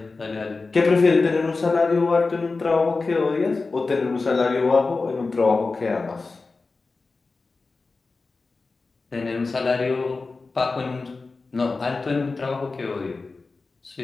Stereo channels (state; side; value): quieter; right; 3.9 dB